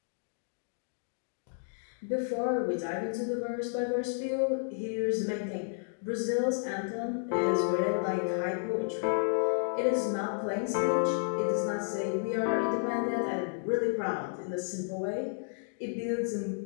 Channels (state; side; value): silent; right; digital silence